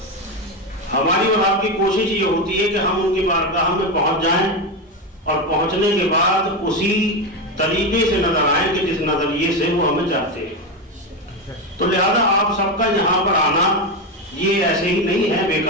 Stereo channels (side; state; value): both; normal; correlation 0.13